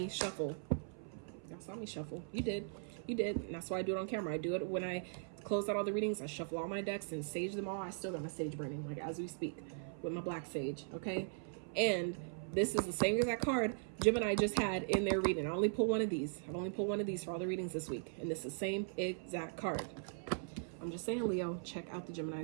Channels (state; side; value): silent; left; 51 dB below the other